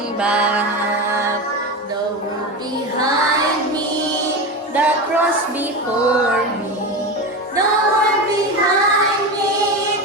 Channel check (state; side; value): normal; both; correlation 0.21